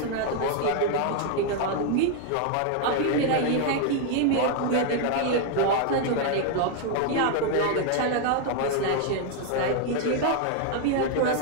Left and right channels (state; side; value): different; both; correlation 0.00